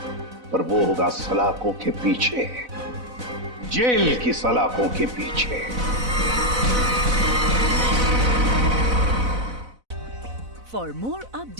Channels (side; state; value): left; late; 4.0 ms